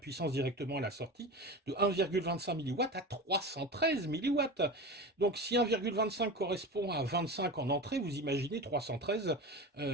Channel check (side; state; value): both; normal; correlation 0.28